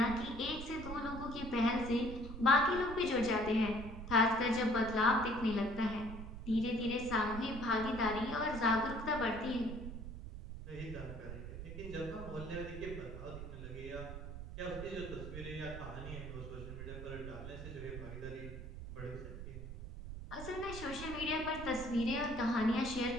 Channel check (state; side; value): noise; right; rumble, 9 dB below the sound